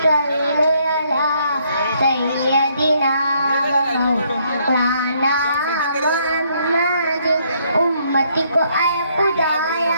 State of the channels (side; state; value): both; inverted; correlation -0.70